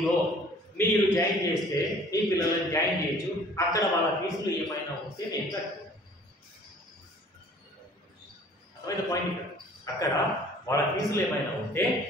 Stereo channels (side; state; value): both; normal; correlation 0.52